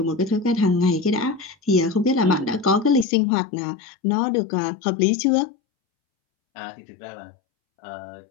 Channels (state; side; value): drops out; right; at 3.1 s